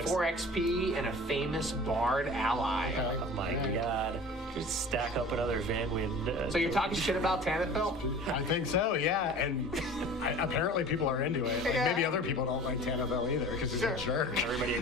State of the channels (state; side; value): normal; both; correlation 0.41